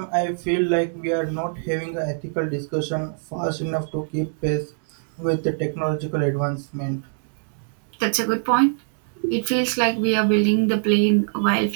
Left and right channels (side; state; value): left; silent; 61 dB below the other